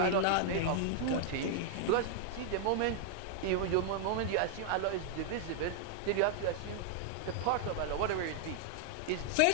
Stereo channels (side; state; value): both; different; correlation 0.00